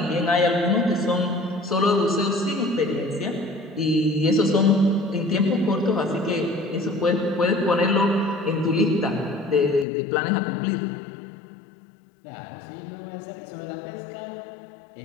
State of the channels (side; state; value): right; drops out; at 9.9 s